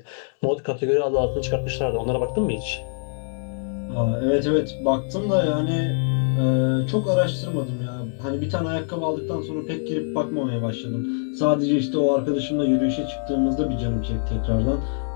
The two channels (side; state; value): right; silent; 63 dB below the other